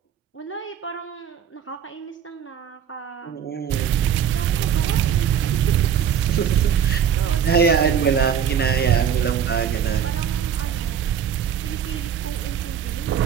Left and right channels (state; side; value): quieter; left; 8.4 dB